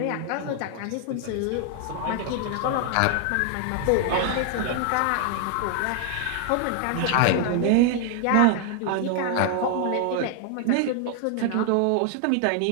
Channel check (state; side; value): different; both; correlation 0.00